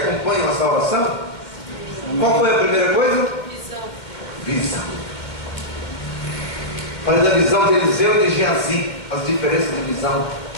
a salvação? Qual foi a primeira coisa? Visão. Falei da visão de Eliseu e de Geazi, as diferenças de visão.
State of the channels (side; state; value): right; late; 2.2 ms